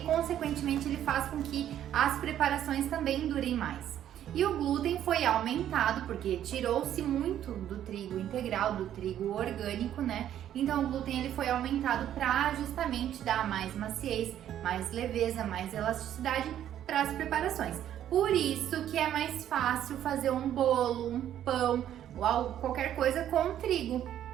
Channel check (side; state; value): left; quieter; 11.0 dB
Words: consequentemente, ele faz com que as preparações também durem mais. E o glúten foi aumentado porque tirou-se muito do trigo integral, do trigo orgânico, né? Então o glúten ele foi aumentado para justamente dar mais maciez, mais leveza, mais elasticidade para as preparações. Por isso que é mais fácil fazer um bolo, um pão ou qualquer coisa com trigo,